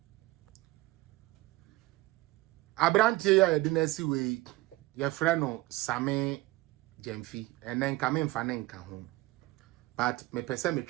Abrantie ya dinasi we your friend no Same Jemfi and then come in fanenka home. But me pese me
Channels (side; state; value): left; quieter; 19.6 dB